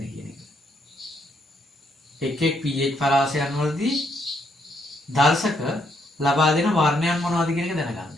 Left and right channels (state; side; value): normal; both; correlation 0.74